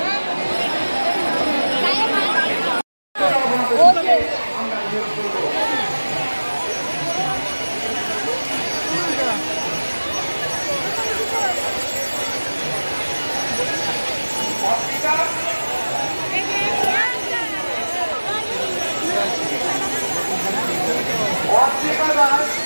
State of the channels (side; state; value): both; inverted; correlation -1.00